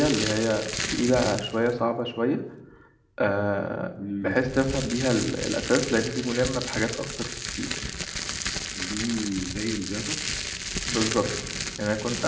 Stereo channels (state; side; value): identical; both; correlation 1.00